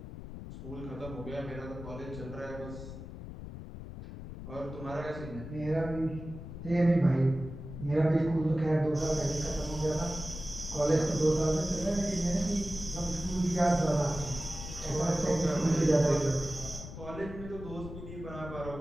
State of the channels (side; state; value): left; noise; rumble, 11 dB below the sound